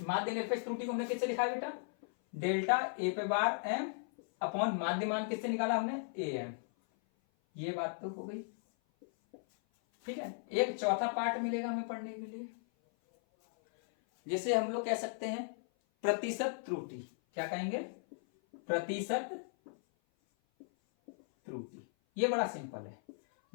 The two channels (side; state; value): right; silent; 54 dB below the other